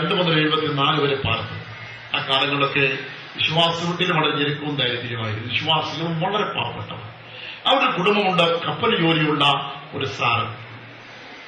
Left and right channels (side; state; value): both; identical; correlation 1.00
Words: മുതൽ 74 വരെ പാർത്തു. ആ കാലങ്ങളൊക്കെ വിശ്വാസത്തിലും വളരെ ഞെരുക്കവും ദാരിദ്ര്യമായിരുന്നു. വിശ്വാസികളും വളരെ പാവപ്പെട്ടവർ. അവിടെ കുടുംബമുണ്ട്. കപ്പൽ ജോലിയുള്ള ഒരു സാറ്.